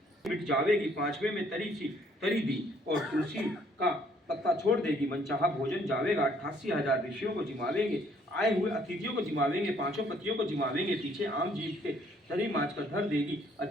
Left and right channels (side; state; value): both; normal; correlation 0.64